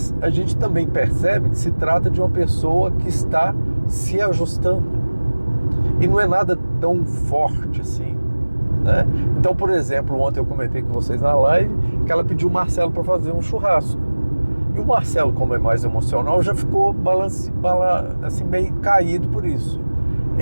a gente também percebe que se trata de uma pessoa que está se ajustando. E não é nada tão forte assim, né? Então, por exemplo, ontem eu comentei com vocês na live que ela pediu o Marcelo para fazer um churrasco. E o Marcelo, como é mais emocional, já ficou assim, meio caído por isso.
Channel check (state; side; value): inverted; both; correlation -1.00